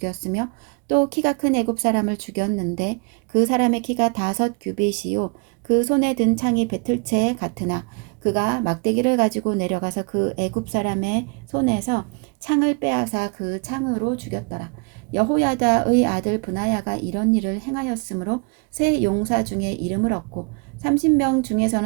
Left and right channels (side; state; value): left; quieter; 33.0 dB